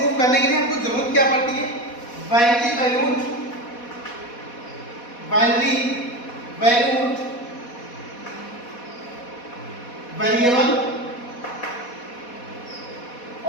करने के लिए हमको जरूरत क्या पड़ती है? बाइनरी वैल्यूड वेरिएबल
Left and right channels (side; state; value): right; late; 4.1 ms